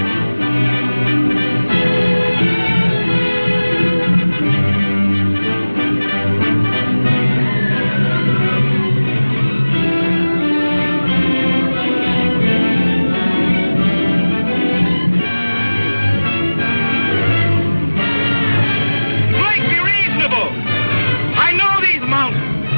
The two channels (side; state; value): both; inverted; correlation -1.00